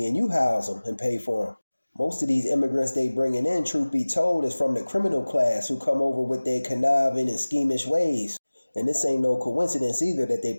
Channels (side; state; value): both; inverted; correlation -1.00